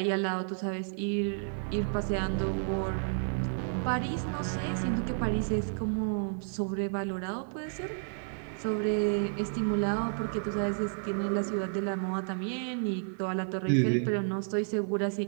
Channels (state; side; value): silent; left; 57 dB below the other